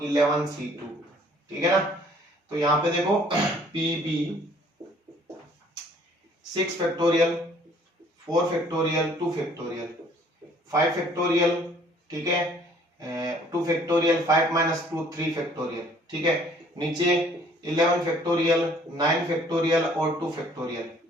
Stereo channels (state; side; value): normal; both; correlation 0.58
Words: 11c2। ठीक है ना, तो यहां पे देखो PB 6 factorial 4 factorial 2 factorial 5 factorial. ठीक है, 2 फैक्टोरियल 5 माइनस 2 3 फैक्टोरियल। ठीक है, नीचे 11 फैक्टोरियल 9 फैक्टोरियल और 2 फैक्टोरियल।